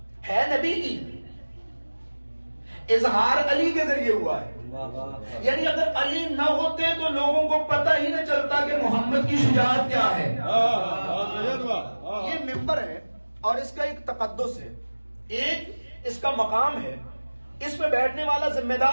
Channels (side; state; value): both; inverted; correlation -1.00